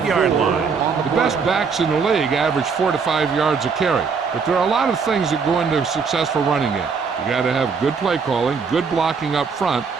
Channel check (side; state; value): left; quieter; 5.5 dB